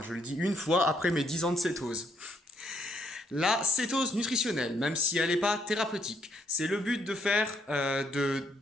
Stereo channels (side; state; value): both; normal; correlation 0.72